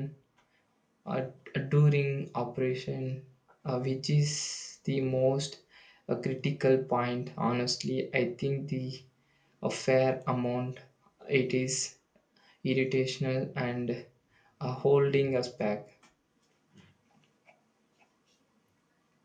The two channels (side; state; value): both; identical; correlation 1.00